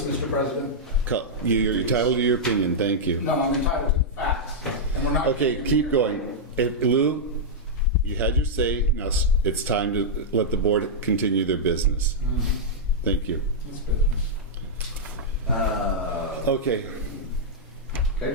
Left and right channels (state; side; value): normal; both; correlation -0.07